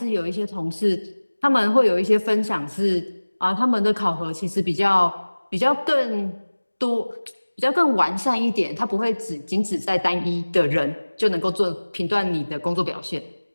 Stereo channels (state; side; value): inverted; both; correlation -1.00